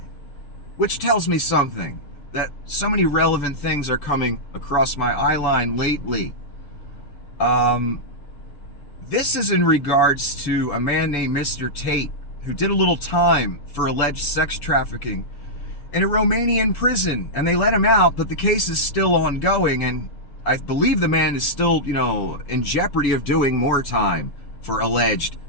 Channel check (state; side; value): late; right; 7.0 ms